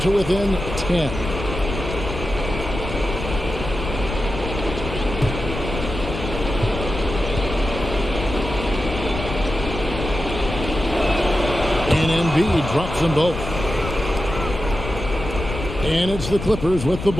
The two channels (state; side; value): noise; left; rumble, 7 dB below the sound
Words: within 10. And Embiid drops them both. And it's the Clippers with the